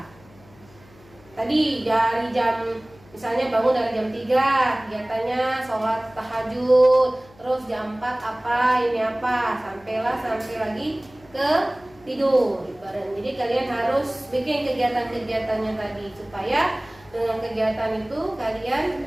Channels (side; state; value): left; noise; hum, 25 dB below the sound